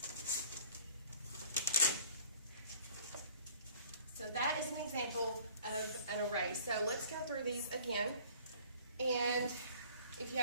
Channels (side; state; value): both; inverted; correlation -0.52